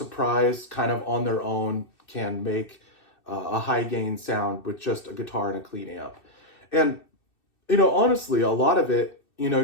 kind of on their own can make a high gain sound with just a guitar and a clean amp. And, honestly, a lot of it, you know,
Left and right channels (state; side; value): late; right; 2.6 ms